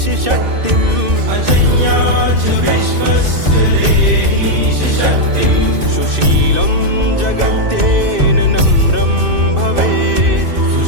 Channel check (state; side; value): late; left; 2.5 ms